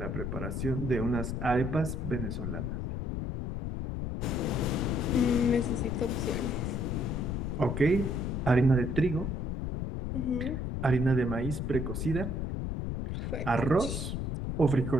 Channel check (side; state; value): left; noise; rumble, 2 dB below the sound